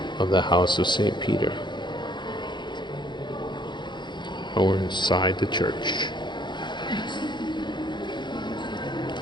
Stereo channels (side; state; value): right; late; 0.22 ms